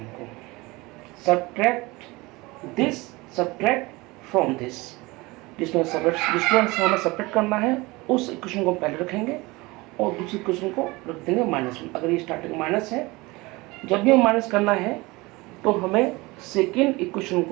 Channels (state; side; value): quieter; left; 22.8 dB